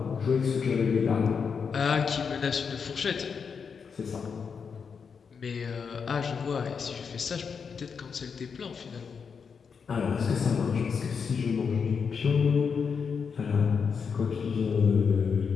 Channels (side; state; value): right; quieter; 6.1 dB